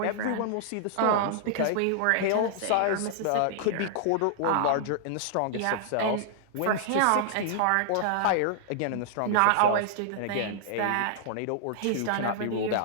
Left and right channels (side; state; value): both; different; correlation -0.01